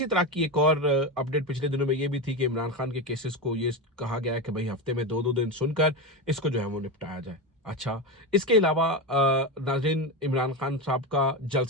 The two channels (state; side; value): normal; both; correlation 0.16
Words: तरह की एक और अपडेट पिछले दिनों में ये भी थी कि इमरान खान के केसेस को ये कहा गया है कि भाई हफ्ते में 2-2 दिन सुनकर इसको जो है वो निपटाया जाए। अच्छा, इसके अलावा नाज़रीन इमरान खान साहब का